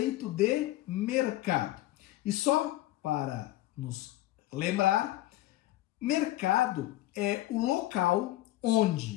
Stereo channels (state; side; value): quieter; right; 16.0 dB